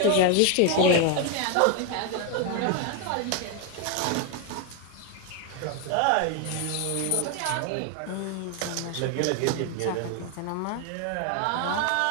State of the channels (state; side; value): different; both; correlation 0.01